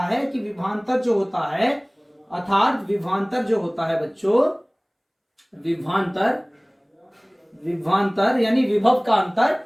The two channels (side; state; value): both; identical; correlation 1.00